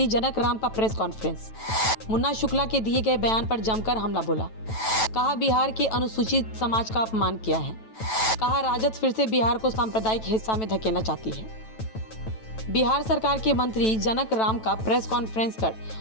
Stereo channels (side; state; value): right; late; 9.1 ms